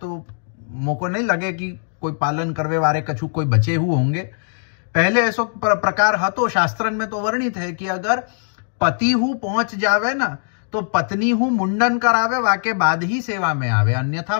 मोको नहीं लगे कि कोई पालन करवे वारे कछु कोई बचे हुए होंगे। पहले ऐसो प्रकार हतो, शास्त्रन में तो वर्णित है कि अगर पति हु पहुंच जावे ना तो पत्नी हु मुंडन करावे, वाके बाद ही सेवा में आवे, अन्यथा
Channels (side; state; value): right; silent; digital silence